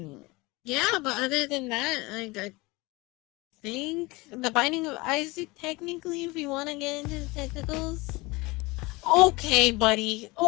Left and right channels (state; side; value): quieter; right; 23.5 dB